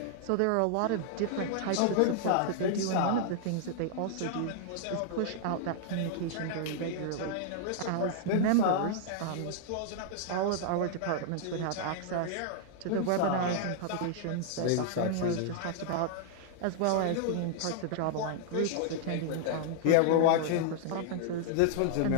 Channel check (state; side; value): different; both; correlation -0.01